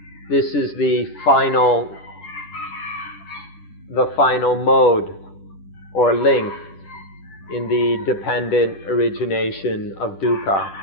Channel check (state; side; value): late; right; 10 ms